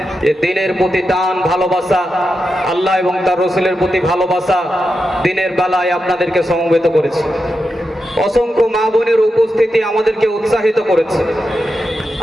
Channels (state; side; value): normal; both; correlation 0.88